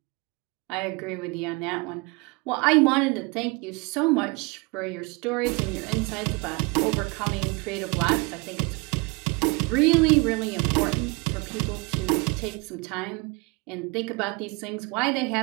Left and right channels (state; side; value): quieter; left; 27.7 dB